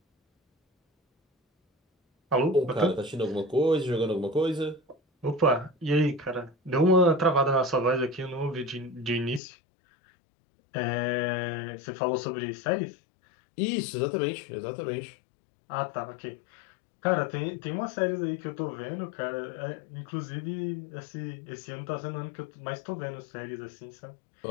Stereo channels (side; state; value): right; drops out; at 9.4 s